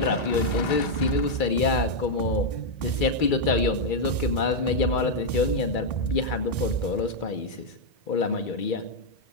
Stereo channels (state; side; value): late; right; 2.3 ms